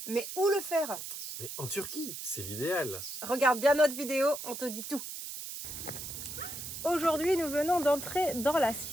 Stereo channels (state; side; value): noise; right; hiss, 8 dB below the sound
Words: Mais où le faire? Mais en Turquie, c'est l'idéal. Regarde bien notre vidéo, on te dit tout. Aujourd'hui, nous venons d'entrer dans la